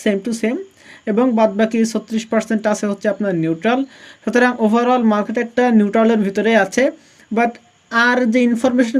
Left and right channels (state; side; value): identical; both; correlation 1.00